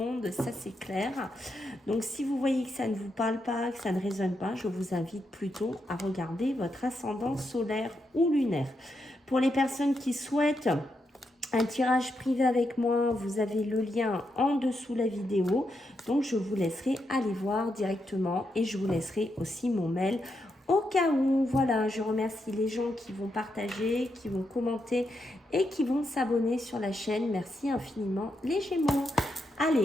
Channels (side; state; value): both; normal; correlation 0.83